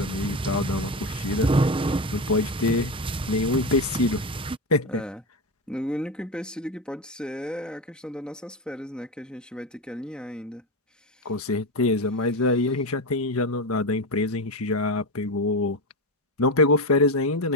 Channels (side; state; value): both; normal; correlation 0.17